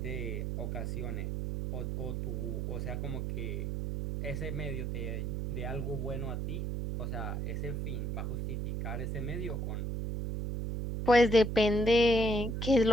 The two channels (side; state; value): right; noise; hum, 2 dB below the sound